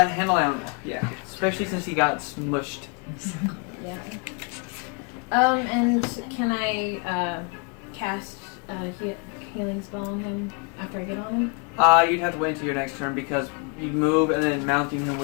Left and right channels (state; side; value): quieter; right; 35.7 dB